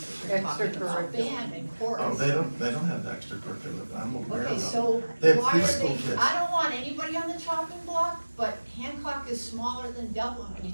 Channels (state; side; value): inverted; both; correlation -1.00